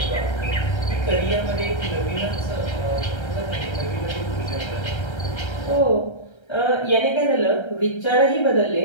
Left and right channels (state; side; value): late; right; 1.3 ms